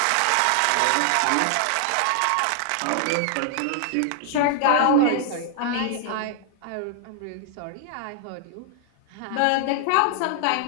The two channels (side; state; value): both; different; correlation 0.00